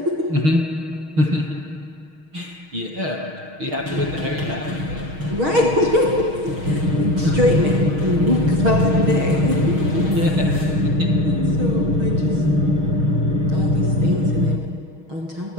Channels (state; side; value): late; left; 6.4 ms